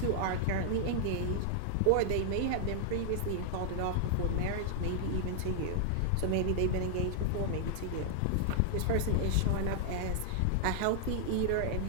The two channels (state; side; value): different; both; correlation -0.01